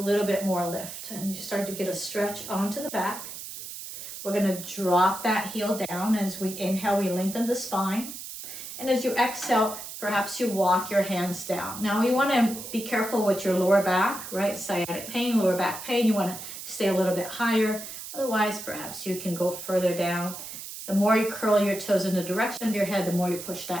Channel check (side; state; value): right; noise; hiss, 10 dB below the sound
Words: bit more lift. And you start to get a stretch onto the back. We're going to drop that heel down. As we inhale, we lengthen the spine. And as you exhale, perhaps you walk your hands down. Now you want to be careful with your lower back, right? Sciatic pain, lower back pain. You want to stay a little bit higher. Otherwise, perhaps you can go further down. The more you curl your toes in the direction of your head, the more you push